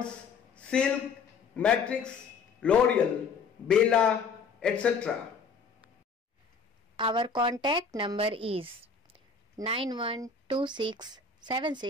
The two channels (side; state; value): right; quieter; 5.1 dB